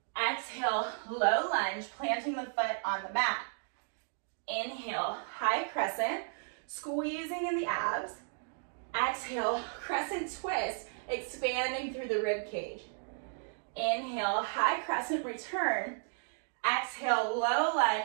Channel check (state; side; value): silent; left; digital silence